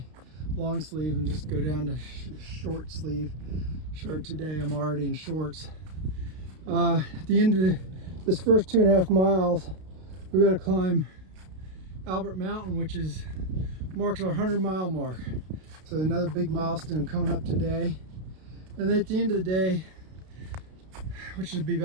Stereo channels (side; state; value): left; late; 32 ms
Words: long sleeve and just go down to short sleeve shirt today. I'm already in shorts. At the end of this first 2.5 miles, we got to climb Albert Mountain, which marks our 100-mile mark. So another big milestone coming up today. And then at the end of the day, which would be